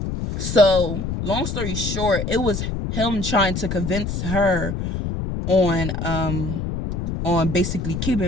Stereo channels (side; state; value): left; noise; rumble, 3 dB below the sound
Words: So, long story short, it was him trying to convince her on basically